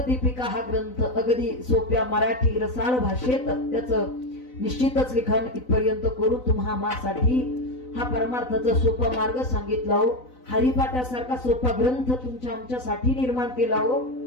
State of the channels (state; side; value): late; right; 3.9 ms